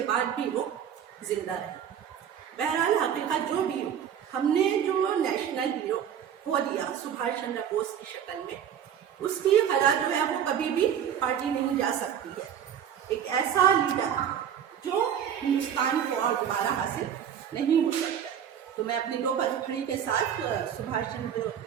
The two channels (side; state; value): left; quieter; 9.0 dB